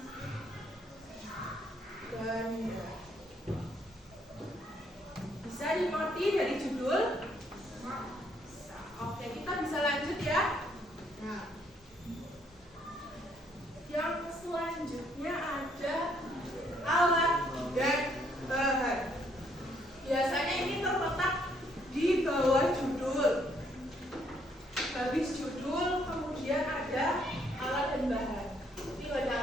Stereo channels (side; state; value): both; normal; correlation 0.69